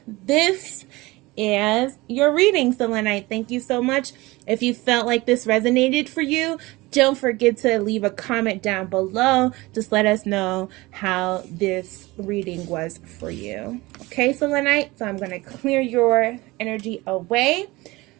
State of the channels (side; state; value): left; quieter; 21.3 dB